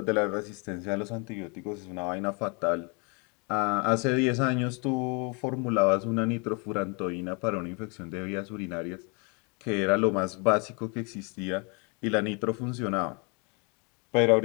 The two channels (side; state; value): right; quieter; 32.8 dB